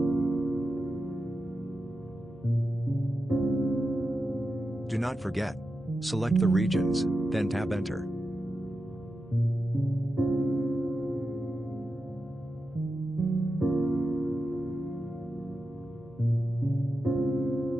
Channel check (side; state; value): both; normal; correlation 0.90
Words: Do not forget. Select the regions, then tab Enter.